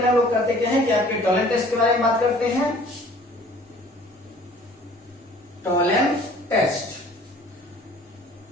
हम लोग करते क्या है कि आपके टॉलेंट टेस्ट के बारे में बात करते हैं। टॉलेंस टेस्ट,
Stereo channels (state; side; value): normal; both; correlation 0.52